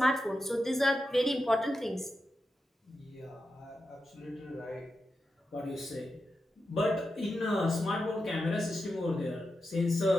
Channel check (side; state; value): both; normal; correlation 0.89